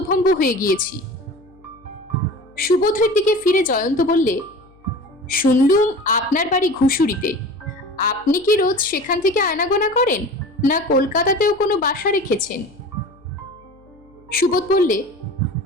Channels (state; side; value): noise; left; hum, 29 dB below the sound